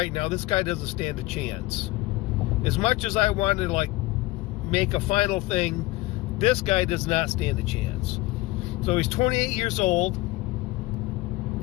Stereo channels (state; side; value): quieter; right; 19.9 dB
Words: now, this guy doesn't stand a chance. As much as I wanted to make a final thing, this guy does not stand a chance. So he's 28 years old.